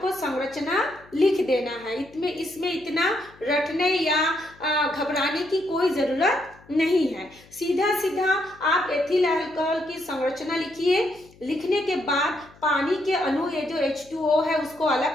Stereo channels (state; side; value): noise; left; hum, 26 dB below the sound